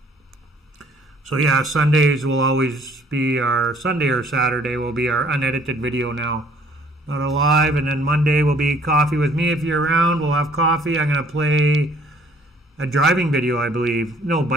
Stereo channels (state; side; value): normal; both; correlation 0.58